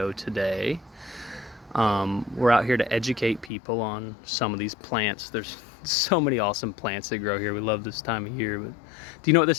today. We're out here to educate people on some of these plants. There's so many awesome plants that grow here. We love this time of year. But do you know what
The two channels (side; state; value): right; drops out; at 3.5 s